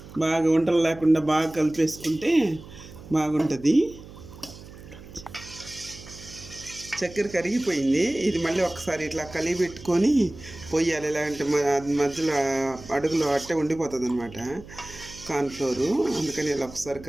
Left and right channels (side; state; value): right; noise; hum, 17 dB below the sound